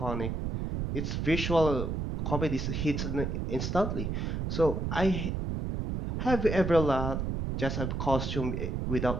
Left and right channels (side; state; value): right; noise; rumble, 2 dB below the sound